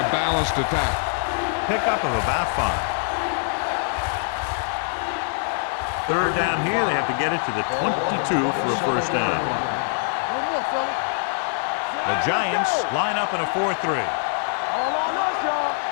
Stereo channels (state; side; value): silent; right; digital silence